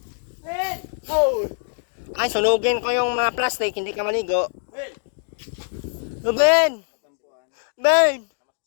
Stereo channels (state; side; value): silent; right; digital silence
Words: Ben! Oh! Ay, sunugin ko yung mga plastic, hindi ka maligo. Ben! Ben!